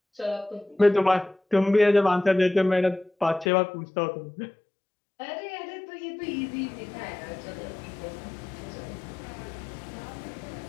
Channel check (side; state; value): right; drops out; at 3.5 s